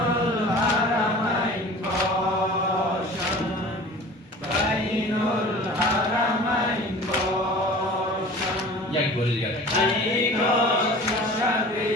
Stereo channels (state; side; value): normal; both; correlation 0.41